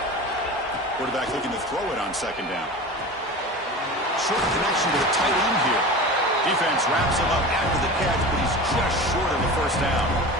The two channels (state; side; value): normal; both; correlation 0.33